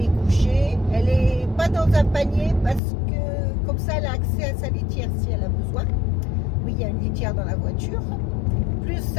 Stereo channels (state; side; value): drops out; right; at 2.8 s